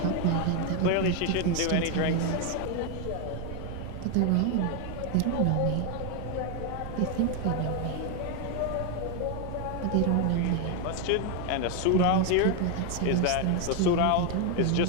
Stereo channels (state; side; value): different; both; correlation 0.01